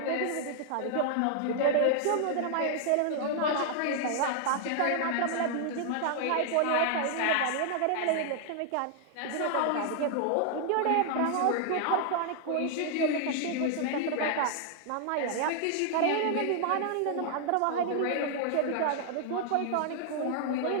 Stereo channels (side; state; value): both; different; correlation 0.00